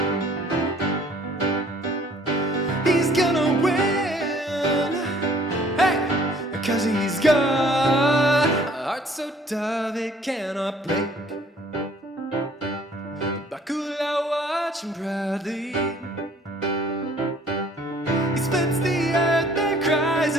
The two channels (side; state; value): both; normal; correlation 0.57